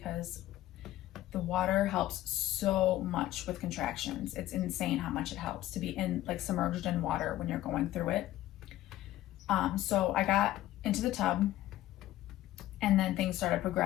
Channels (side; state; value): right; quieter; 14.7 dB